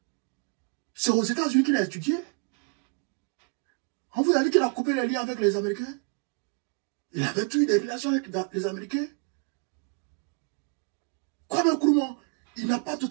C'est aux États-Unis qu'il a étudié. On vous a dit qu'il a coupé les liens avec les Américains. Il avait eu des relations avec les Américains. Kwame Nkrumah, il n'a pas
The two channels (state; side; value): quieter; left; 38.1 dB